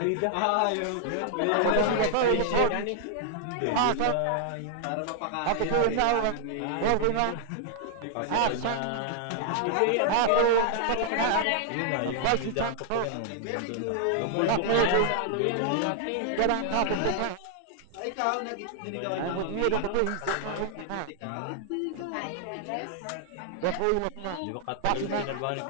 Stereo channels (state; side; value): different; both; correlation 0.00